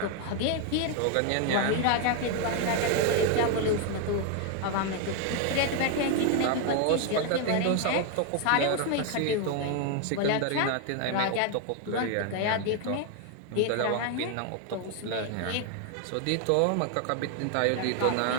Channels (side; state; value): both; different; correlation 0.01